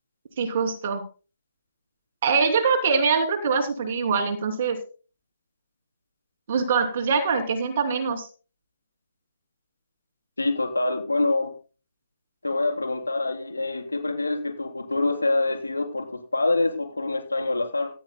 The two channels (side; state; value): both; inverted; correlation -0.76